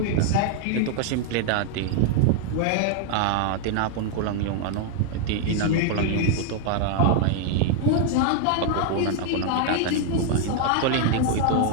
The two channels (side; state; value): both; different; correlation 0.00